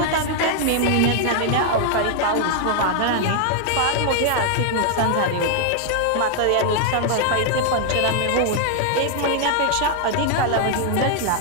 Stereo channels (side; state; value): both; different; correlation 0.00